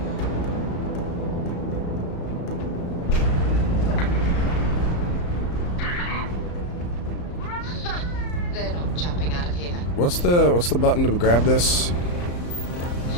They're not jumping out of here. What's the button to grab this?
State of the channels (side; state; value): right; late; 34 ms